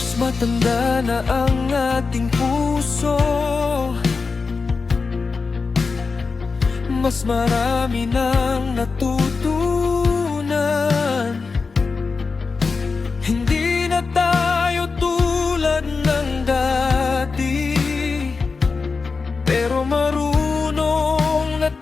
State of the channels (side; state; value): right; quieter; 4.6 dB